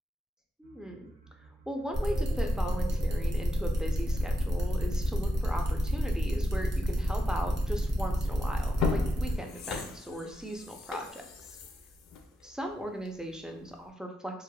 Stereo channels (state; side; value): normal; both; correlation 0.86